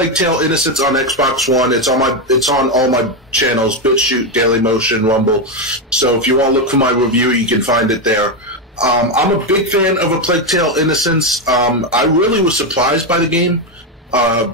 Tale: Innocence on Xbox One. It's on all my channels: BitChute, Dailymotion, Rumble. So if you want to look for my review, you can find it there. I'm a big fan of A Plague Tale: Innocence. I really was surprised by the game. I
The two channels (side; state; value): both; normal; correlation 0.07